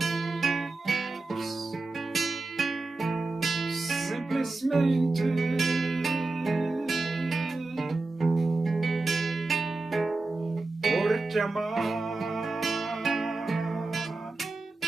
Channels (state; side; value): quieter; left; 3.3 dB